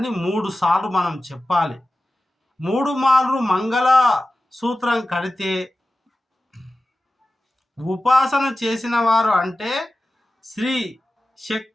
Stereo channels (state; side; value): normal; both; correlation 0.95